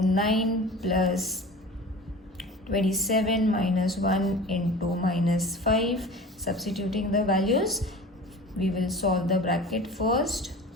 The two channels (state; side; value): normal; both; correlation 0.38